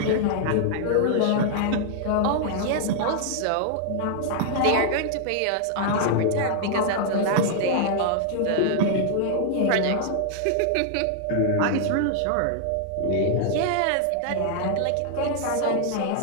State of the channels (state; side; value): different; both; correlation -0.01